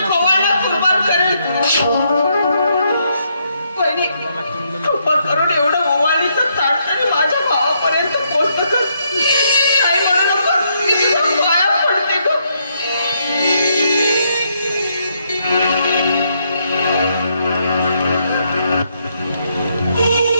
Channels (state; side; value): inverted; both; correlation -0.75